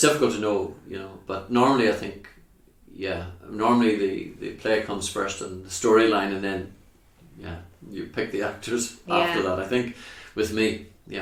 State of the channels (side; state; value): both; identical; correlation 1.00